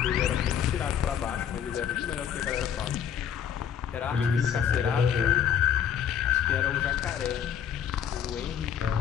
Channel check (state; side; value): quieter; right; 8.7 dB